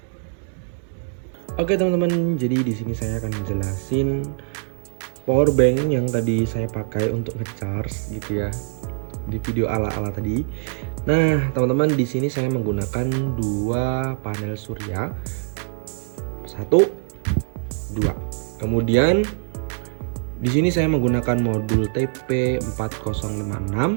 Oke teman-teman, jadi di sini saya akan menjelasin power bank yang tadi saya pakai untuk ngecharge gitu ya di video ala-ala tadi. Nah teman-teman, di sini saya menggunakan dua panel surya, 1, 2. Kemudian di sini saya menggunakan modul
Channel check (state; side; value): silent; left; digital silence